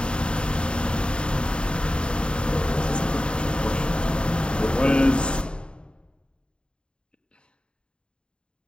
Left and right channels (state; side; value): late; right; 0.052 ms